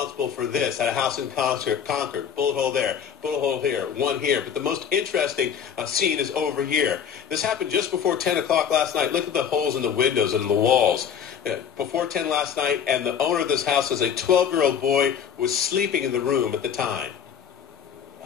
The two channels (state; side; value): quieter; right; 8.0 dB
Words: for this at a house in Concord. Bullet hole there, bullet hole here, one here. But the most interesting scene is over here. This happened just before 10 o'clock last night. Look at the holes in the windows and the walls. Before 10 last night, and the owner of this house says a 12-year-old boy was sleeping in the room at the time.